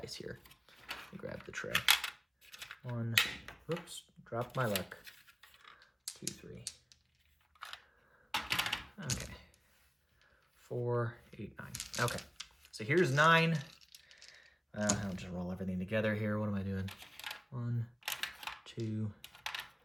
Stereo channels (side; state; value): both; identical; correlation 1.00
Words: here. Let me grab the tray. 1, whoops, dropped my luck. 2, 3. Okay. 4, 8, 9. Okay. So here's 9. I'll just roll everything together here. What am I doing? 1, 2,